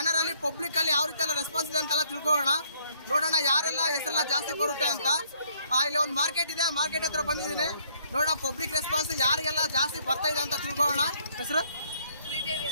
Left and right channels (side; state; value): both; inverted; correlation -0.66